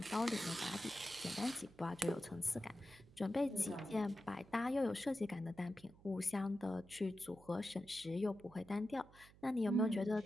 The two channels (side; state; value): right; noise; hum, 23 dB below the sound